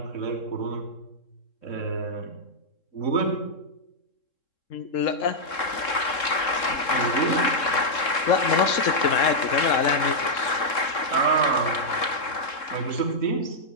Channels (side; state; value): right; late; 3.7 ms